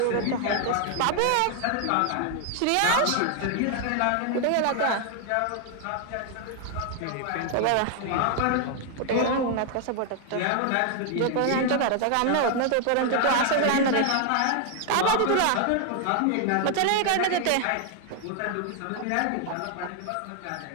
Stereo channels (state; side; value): different; both; correlation 0.00